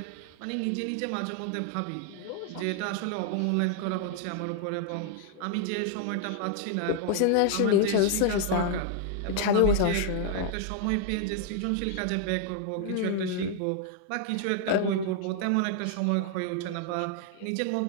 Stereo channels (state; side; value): different; both; correlation 0.00